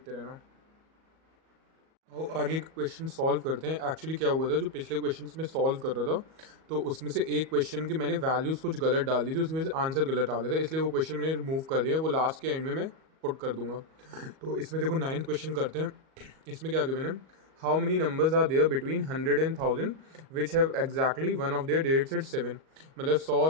रहना। और आगे क्वेश्चन सॉल्व करते हैं। एक्चुअली क्या हुआ था, जो पिछले क्वेश्चंस में सॉल्व कर रहा था तो उसमें से एक क्वेश्चन की मैंने वैल्यूज़ कुछ गलत डाल दी थी, उसकी वजह से आंसर गलत आ गया था, इसलिए वो क्वेश्चन मैंने रिमूव कर दिया, वो लास्ट के एंड में मैं पुट कर दूंगा। तो इसमें देखो 9th क्वेश्चन करते हैं। इसमें क्या गिवन है, how many numbers are there between 100 and 1000 which have exactly one of their digits at 7, मतलब 100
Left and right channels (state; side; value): late; left; 38 ms